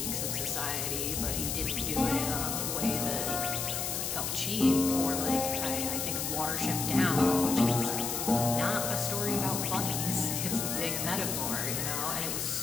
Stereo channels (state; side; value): noise; left; hiss, 2 dB below the sound